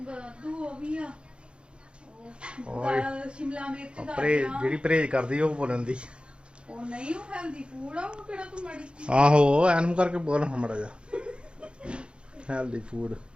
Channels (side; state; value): left; late; 0.055 ms